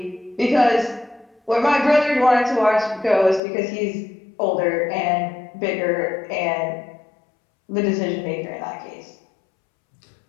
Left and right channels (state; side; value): drops out; right; at 3.4 s